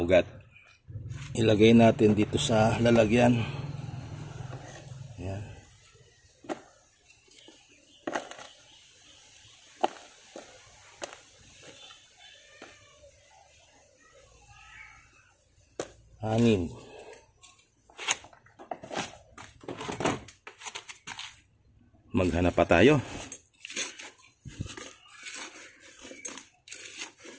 ugat. Ilagay natin dito sa lalagyan. Ayan. Anim. Maghanap pa tayo.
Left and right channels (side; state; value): both; identical; correlation 1.00